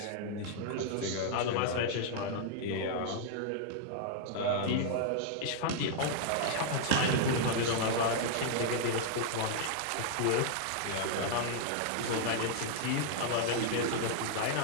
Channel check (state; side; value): different; both; correlation -0.01